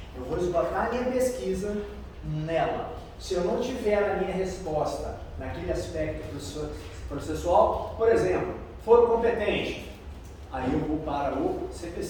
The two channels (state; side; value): identical; both; correlation 1.00